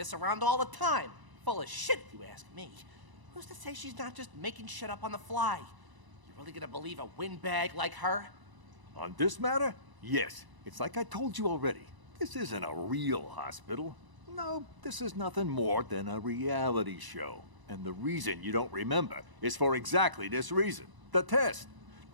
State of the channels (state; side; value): late; left; 1.0 ms